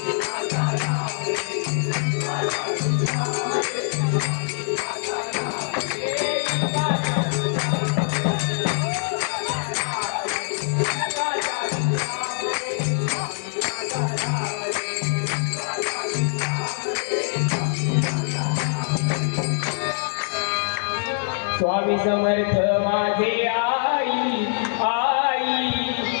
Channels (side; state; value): right; silent; digital silence